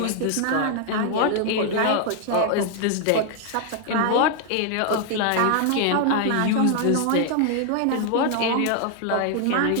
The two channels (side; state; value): both; different; correlation 0.00